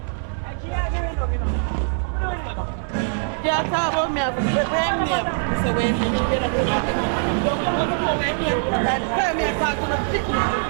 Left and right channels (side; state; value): left; silent; 64 dB below the other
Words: Yeah, talk about me.